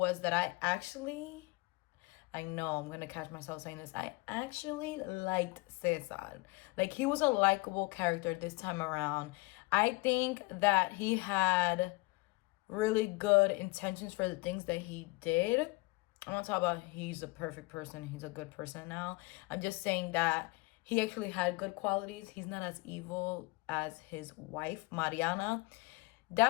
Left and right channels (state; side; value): quieter; right; 25.3 dB